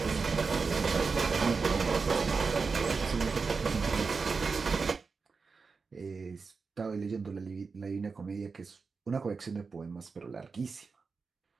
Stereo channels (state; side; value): quieter; left; 4.8 dB